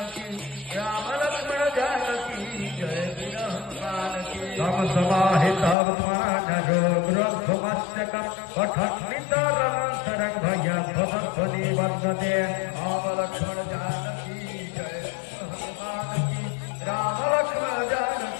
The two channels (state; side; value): drops out; right; at 5.8 s